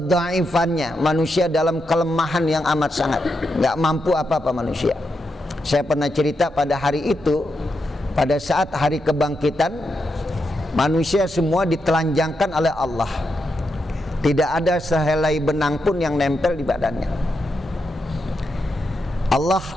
manusia dalam kelemahan yang amat sangat, nggak mampu apa-apa manusia. Saya pernah cerita pada hari itu, pada saat hari kebangkitan, manusia semua ditelanjangkan oleh Allah. Tidak ada sehelai benang pun yang nempel di badannya. Allah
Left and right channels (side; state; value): both; normal; correlation 0.84